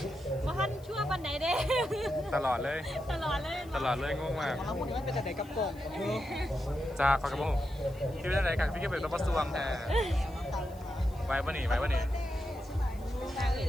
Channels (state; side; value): noise; left; hiss, 25 dB below the sound